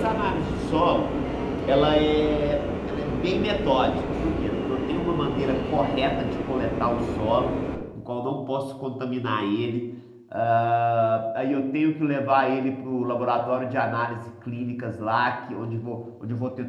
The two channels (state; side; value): identical; both; correlation 1.00